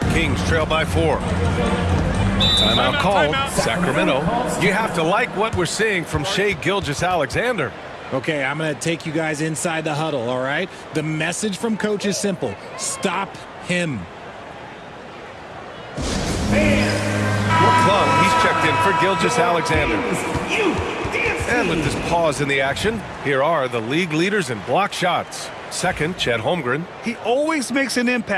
Kings trail by 4. Timeout called. Sacramento. You have to like what we're seeing from Shai Gilgeous-Alexander. Okay, I'm going to take you guys inside the huddle, all right? The message from coach is simple. Stop him. McClung, he's checked in for Gilgeous Alexander. And with this pause in the action, here are the league leaders in block shots. Second, Chet Holmgren. He always makes an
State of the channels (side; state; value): both; identical; correlation 1.00